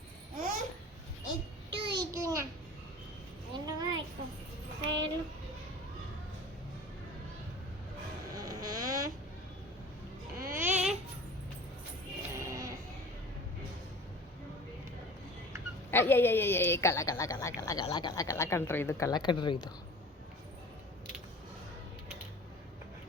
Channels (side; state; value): both; normal; correlation 0.41